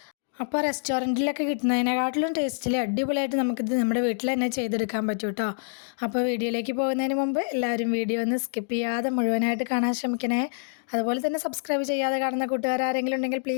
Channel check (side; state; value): right; silent; digital silence